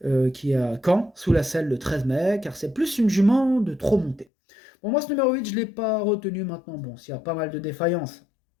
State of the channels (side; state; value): right; drops out; at 4.2 s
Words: qui est à Caen, sous la selle le 13 mai, car c'est plus une jument de trop monter. Bon, moi ce numéro 8, je ne l'ai pas retenu maintenant. Bon, s'il y a pas mal de défaillances,